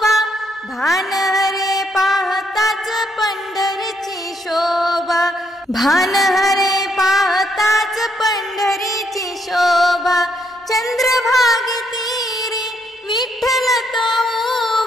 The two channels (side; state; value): both; normal; correlation 0.74